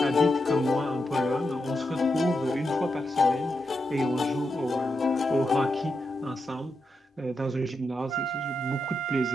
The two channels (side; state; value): both; normal; correlation 0.86